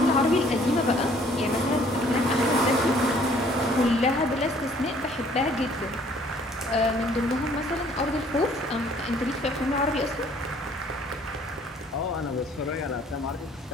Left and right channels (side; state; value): both; normal; correlation 0.58